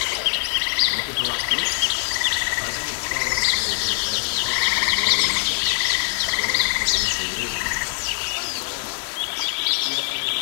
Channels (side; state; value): right; silent; digital silence